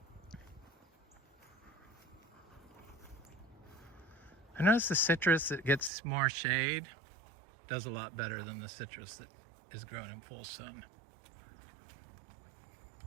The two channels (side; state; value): left; drops out; at 5.9 s